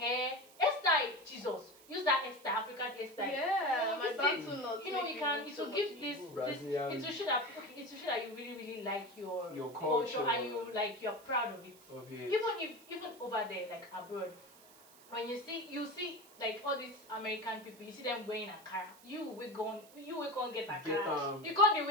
hairstyle. Jesus, use that hairstyle, African hairstyle. Yeah, my back to not. You know, it will give this. It will show that you really like your culture and you're proud of it. Even over there, like abroad, when you see like all these American people, you see them wearing Ankara. You will go get Ankara. You can't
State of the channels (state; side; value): noise; right; hiss, 23 dB below the sound